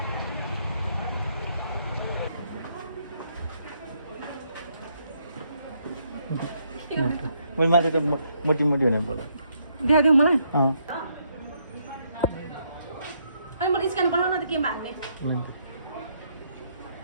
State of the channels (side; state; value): both; inverted; correlation -0.73